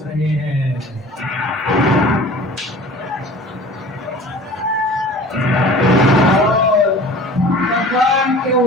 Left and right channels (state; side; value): normal; both; correlation 0.43